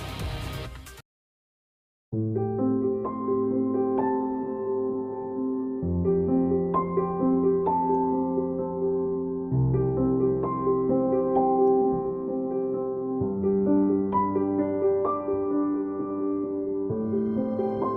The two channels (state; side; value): identical; both; correlation 1.00